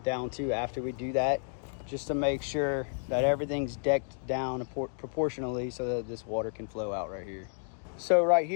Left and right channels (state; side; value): silent; right; digital silence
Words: down too after we do that, just to make sure that everything's decked down proportionally so that this water can flow out right here. So right